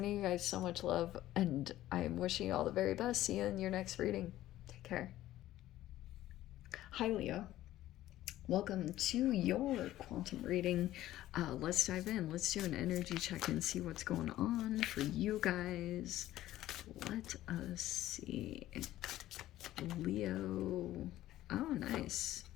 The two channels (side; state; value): right; quieter; 14.4 dB